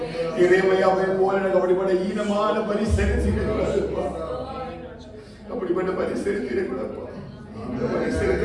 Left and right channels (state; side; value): identical; both; correlation 1.00